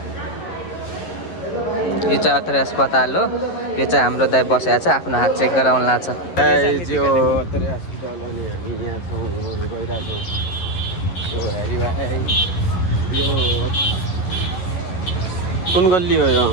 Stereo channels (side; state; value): right; late; 11 ms